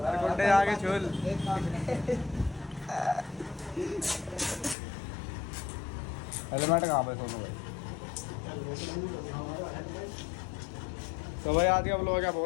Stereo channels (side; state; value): right; drops out; at 4.8 s